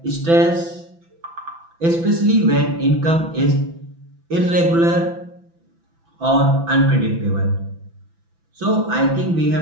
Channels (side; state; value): left; late; 6.0 ms